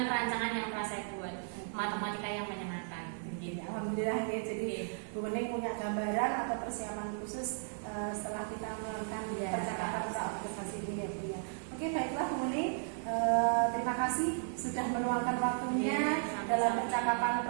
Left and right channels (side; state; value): left; silent; digital silence